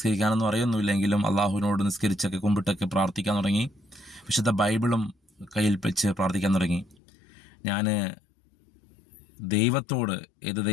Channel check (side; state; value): right; drops out; at 7.0 s